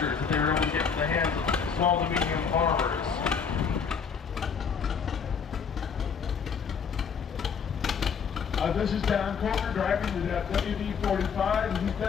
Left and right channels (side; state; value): right; quieter; 6.4 dB